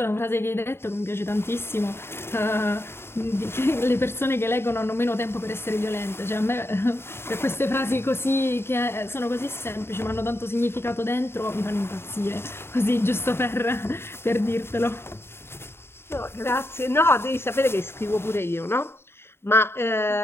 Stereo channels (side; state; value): right; late; 0.12 ms